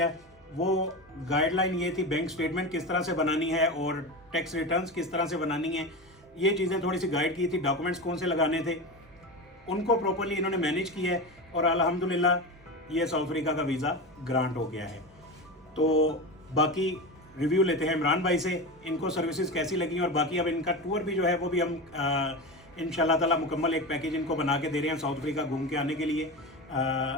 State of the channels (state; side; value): normal; both; correlation 0.23